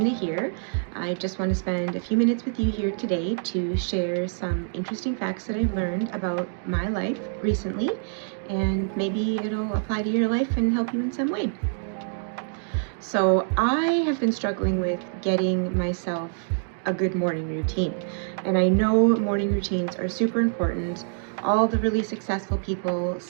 here. I just want to spend a few minutes with you here today to share some interesting facts that I've learned about my life recently, and maybe it'll apply to your life and help you in some way. So, I have been struggling with getting myself a good morning routine, and I know morning routines are super important. All the really successful people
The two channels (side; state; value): left; silent; digital silence